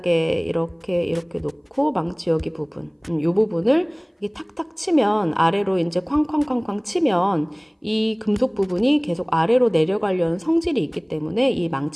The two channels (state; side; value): identical; both; correlation 1.00